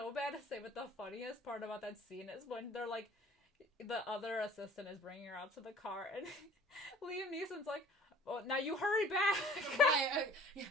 bad to say, but the funniest part about that scene is when they're, like, the other assistant is bringing her out to the car, and Liam Neeson's like, "Oh, now you hurry back." Right,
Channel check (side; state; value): both; normal; correlation 0.48